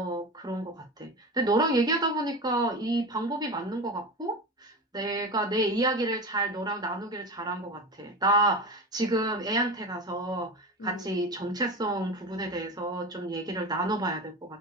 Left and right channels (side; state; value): both; normal; correlation 0.26